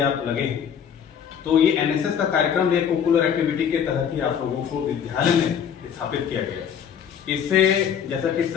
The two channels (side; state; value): right; quieter; 8.1 dB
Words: आप लगे हैं। तो ये एनएसएस का कार्यक्रम एक कोकुलर एक्टिविटी के तहत ही आप लोगों को विद्यालय में स्थापित किया गया है। इससे जैसा कि